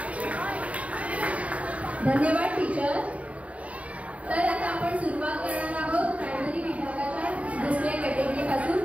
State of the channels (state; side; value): late; left; 0.066 ms